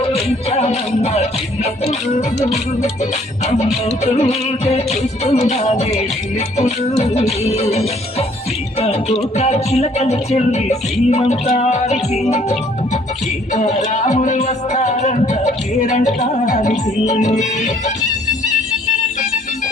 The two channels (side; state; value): both; normal; correlation 0.61